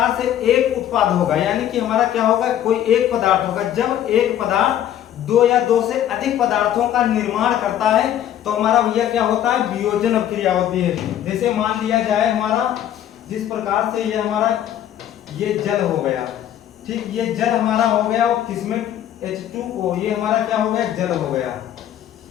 से एक उत्पाद होगा, यानी कि हमारा क्या होगा, कोई एक पदार्थ होगा। जब एक पदार्थ दो या दो से अधिक पदार्थों का निर्माण करता है तो हमारा भैया क्या होता है, वियोजन अभिक्रिया होती है। जैसे मान लिया जाए हमारा, जिस प्रकार से ये हमारा ये जल हो गया, ठीक, ये जल हमारा हो गया और किसमें H2O, ये हमारा क्या हो गया, जल हो गया।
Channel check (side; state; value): right; quieter; 11.1 dB